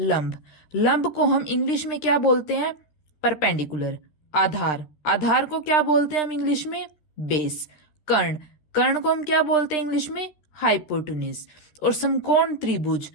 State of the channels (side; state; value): right; late; 13 ms